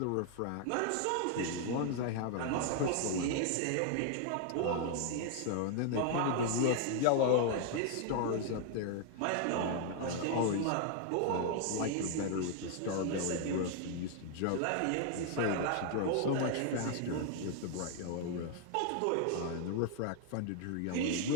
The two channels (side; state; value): both; different; correlation 0.00